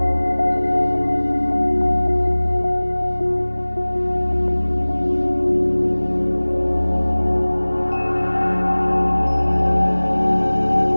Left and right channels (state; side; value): inverted; both; correlation -1.00